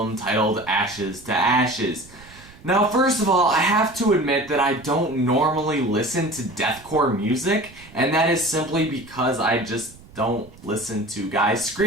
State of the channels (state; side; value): noise; right; rumble, 22 dB below the sound